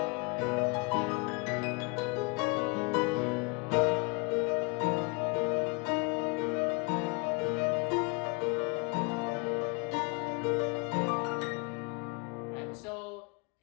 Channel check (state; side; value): quieter; right; 30.8 dB